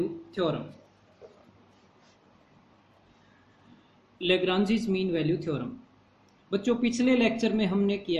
theorem. Lagrange's mean value theorem बच्चों, पिछले लेक्चर में हमने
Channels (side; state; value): both; identical; correlation 1.00